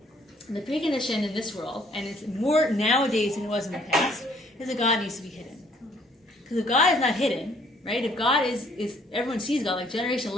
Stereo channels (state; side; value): normal; both; correlation 0.62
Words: And the precondition in this world, and it's more nowadays than it was in the past, is that God needs to be hidden. Because if God is not hidden, right? If God is everyone sees God, like generation